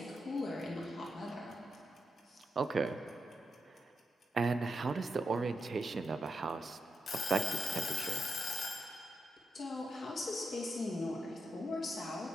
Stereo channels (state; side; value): normal; both; correlation 0.85